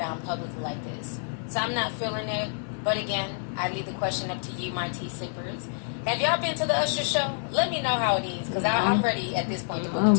publicly like this. So I'm not feeling it. But again, I leave the question up to you, my tea sippers. Have y'all been to the Usher show? Let me know how it is, because I'm ready at this point to book a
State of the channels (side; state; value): right; silent; 60 dB below the other